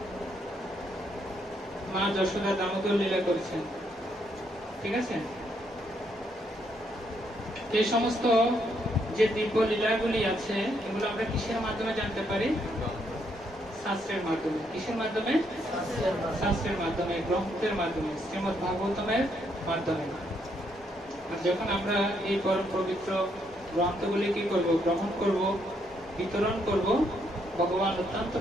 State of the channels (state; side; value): normal; both; correlation 0.74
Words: মা যশোদা দামোদর লীলা করছেন, ঠিক আছে? এই সমস্ত যে দিব্য লীলাগুলি আছে, এগুলো আমরা কিসের মাধ্যমে জানতে পারি? শাস্ত্রের মাধ্যমে। কিসের মাধ্যমে? শাস্ত্রের মাধ্যমে, গ্রন্থের মাধ্যমে, শ্রীমদ ভাগবতমের মাধ্যমে। আর যখন আমরা এই পরম পবিত্র গ্রন্থগুলি কি করব, গ্রহণ করব, বিতরণ করব, ভগবান অত্যন্ত